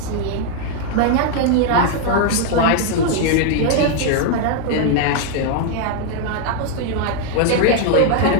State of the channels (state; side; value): different; both; correlation 0.00